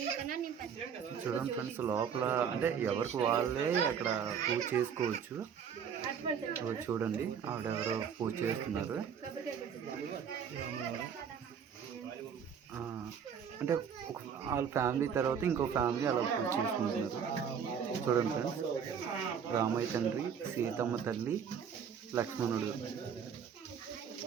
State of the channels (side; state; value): left; quieter; 7.4 dB